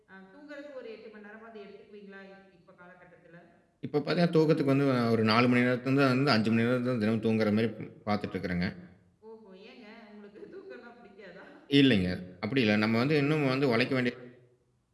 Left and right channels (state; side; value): identical; both; correlation 1.00